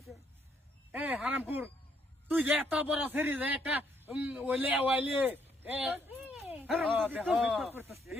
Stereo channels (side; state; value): both; normal; correlation 0.71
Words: এ হারামপুর তুই যে এত বড় সেরি যে একটা ওইলে ওইলে এ